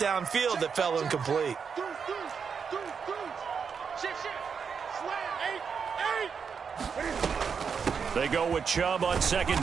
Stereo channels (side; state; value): left; quieter; 6.2 dB